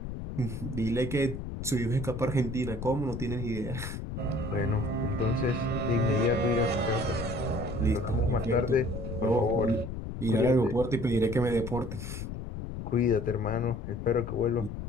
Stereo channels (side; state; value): left; noise; rumble, 7 dB below the sound